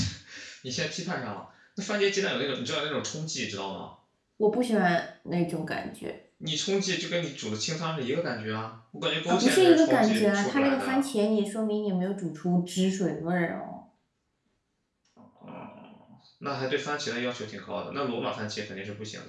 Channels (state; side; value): identical; both; correlation 1.00